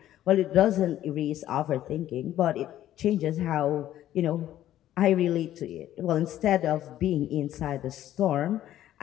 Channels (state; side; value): quieter; right; 12.7 dB